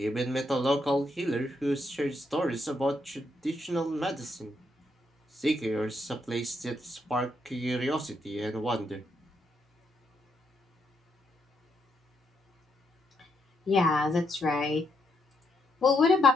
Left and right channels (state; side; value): normal; both; correlation 0.78